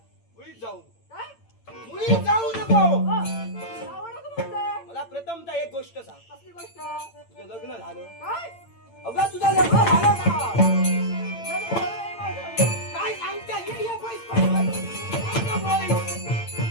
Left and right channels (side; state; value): right; late; 8.8 ms